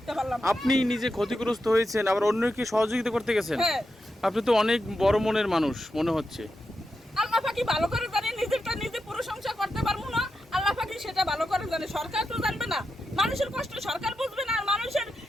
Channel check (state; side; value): normal; both; correlation 0.88